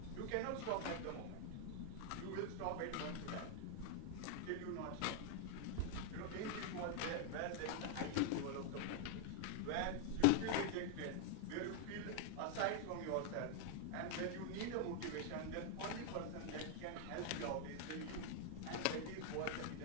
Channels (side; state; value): both; different; correlation 0.00